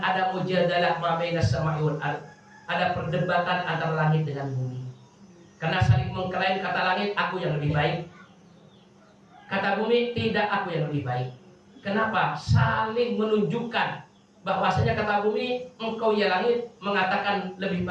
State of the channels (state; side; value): identical; both; correlation 1.00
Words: ada mujadalah ma baina sama'i wal ardh, ada perdebatan antara langit dengan bumi. Karena saling mengklaim, kata langit, aku yang lebih baik, Kata bumi, tidak, aku yang lebih baik. Kenapa? Saling menunjukkan bahwasanya kata bumi, engkau ya langit mengatakan lebih